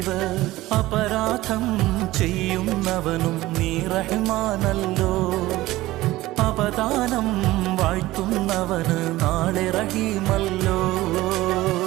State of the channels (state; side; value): quieter; left; 17.4 dB